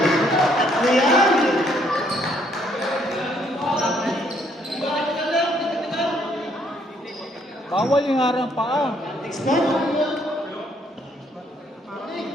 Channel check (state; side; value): normal; both; correlation 0.68